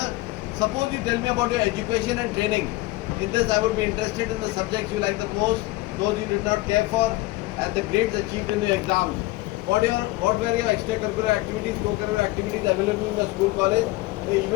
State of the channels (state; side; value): quieter; right; 19.2 dB